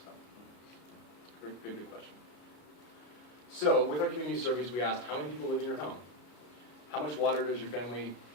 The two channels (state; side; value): late; right; 33 ms